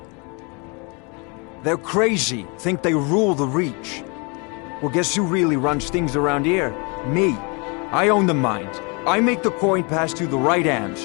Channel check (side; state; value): right; quieter; 32.0 dB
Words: They're crazy, think they rule the Reach. Well, guess who really runs things around here? Me. I own the mines. I make the coin pass to the right